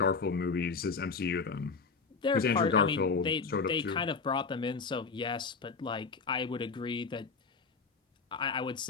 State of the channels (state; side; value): quieter; right; 4.8 dB